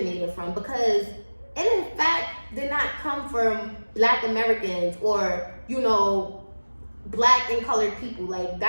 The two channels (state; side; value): inverted; both; correlation -1.00